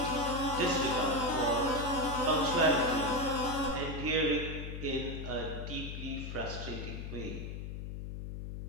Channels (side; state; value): left; noise; hum, 7 dB below the sound